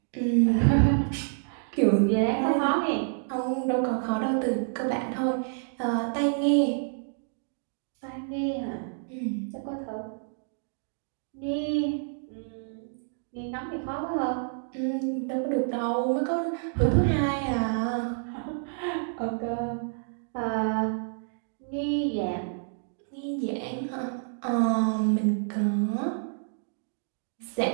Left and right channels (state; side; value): silent; left; digital silence